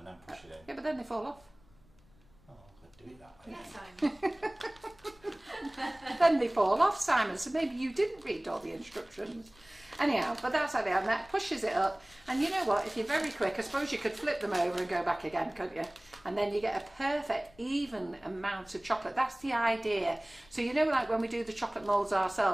then push it in. Yeah, but then they fall off. Oh, I could do it that way. Yes, Simon. Then they fall off, Simon, so maybe you didn't read all the instructions. Anyhow, but that's how they are, and that pushes it up. And you know what, if you're very quick, I suppose you could flip them over and go back again, couldn't you? And then you get a perfect, even amount of chocolate. That's the idea. So you know, like when we do the chocolate moulds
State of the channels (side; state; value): left; noise; rumble, 28 dB below the sound